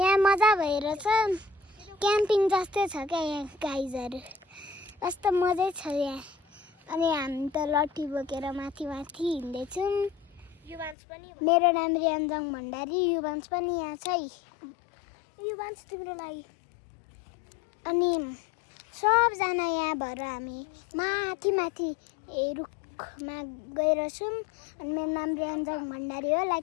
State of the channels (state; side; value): drops out; right; at 11.0 s